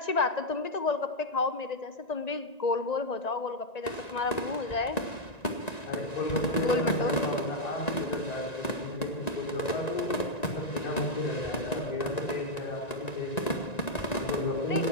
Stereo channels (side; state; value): right; late; 1.9 ms